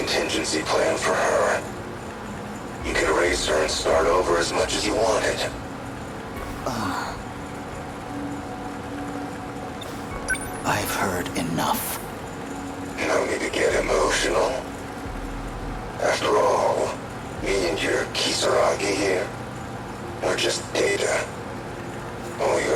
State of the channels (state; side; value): identical; both; correlation 1.00